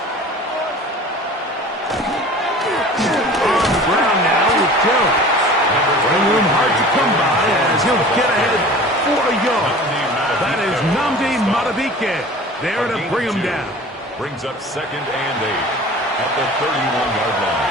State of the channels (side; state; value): both; normal; correlation 0.42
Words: There to bring him down. Brings up 2nd and 8 at the 31-yard